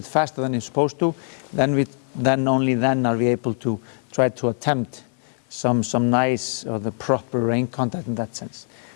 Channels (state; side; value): silent; right; 63 dB below the other